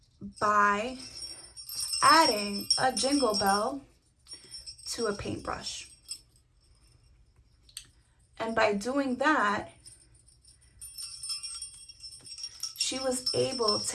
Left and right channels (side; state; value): both; identical; correlation 1.00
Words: by adding a jingle bell to a paintbrush. And by doing that, she was able